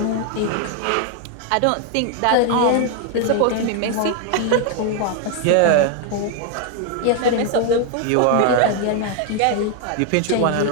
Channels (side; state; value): both; different; correlation 0.00